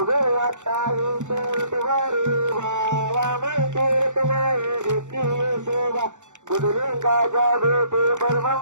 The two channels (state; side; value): late; left; 0.85 ms